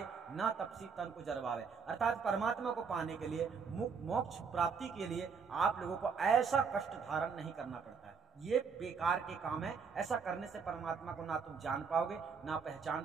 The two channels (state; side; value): quieter; left; 5.7 dB